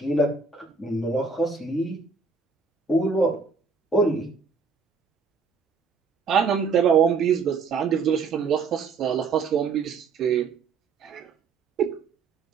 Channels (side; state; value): left; quieter; 5.0 dB